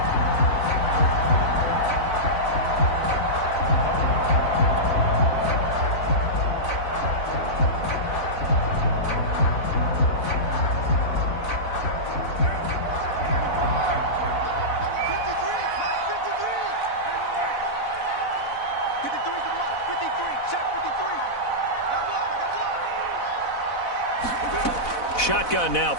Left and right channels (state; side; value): late; right; 4.0 ms